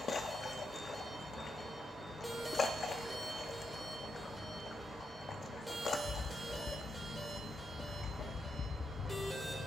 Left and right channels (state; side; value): normal; both; correlation 0.83